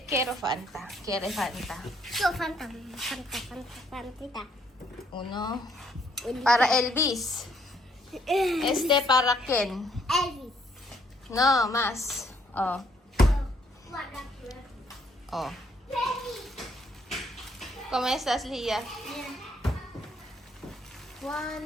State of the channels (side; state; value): both; normal; correlation 0.68